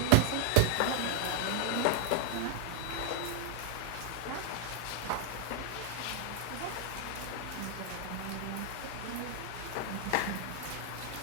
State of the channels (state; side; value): different; both; correlation 0.00